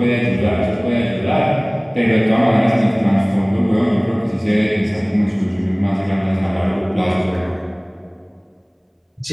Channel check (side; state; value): both; identical; correlation 1.00